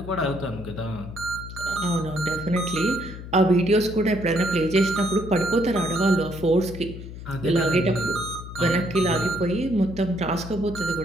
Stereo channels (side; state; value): left; noise; hum, 11 dB below the sound